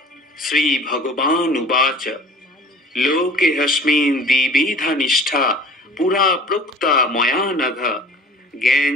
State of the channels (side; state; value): both; normal; correlation 0.45